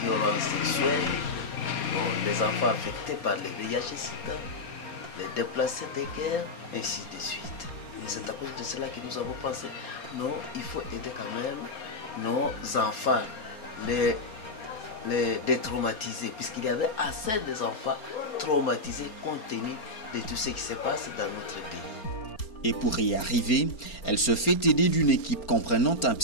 violences sexuelles, les enfants affectés par les VIH-Sida, les déplacés de guerre, ainsi de suite. Et c'est à cause de cela que nous avons pensé, non, il faut aider quand même nos enfants, les détraumatiser, puisqu'il y avait assez d'enfants traumatisés compte tenu de tout ce qui se passe dans notre pays. Et pour y arriver, elle se fait aider d'une équipe comprenant un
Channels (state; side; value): late; right; 4.3 ms